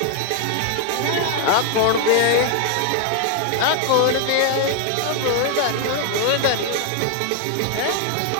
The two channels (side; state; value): both; different; correlation 0.00